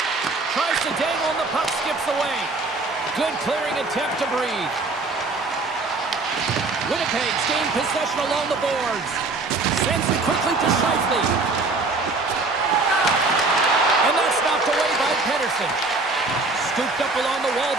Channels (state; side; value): quieter; left; 3.5 dB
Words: Tries to dangle and the puck skips away. Good clearing attempt to breathe. Winnipeg's gained possession along the boards. Sends it quickly to Scheifele. And that's knocked away by Pedersen. Scooped up along the wall